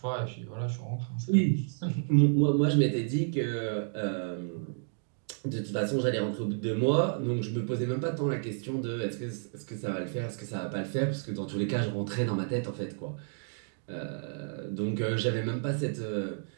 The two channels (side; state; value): left; silent; digital silence